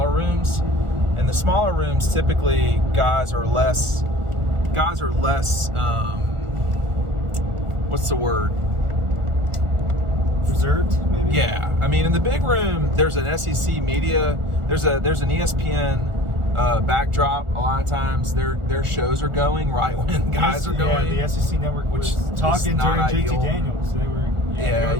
rooms. And the smaller rooms, typically, guys are less. What's the word? Reserved, maybe? Yeah. I mean, in the big room, there's an SEC media. There's an ESPN backdrop. A lot of times, their shows are going right when guys are going. Yeah, the SEC network was talking during JT Daniels. They were. Yeah,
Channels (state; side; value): late; left; 1.4 ms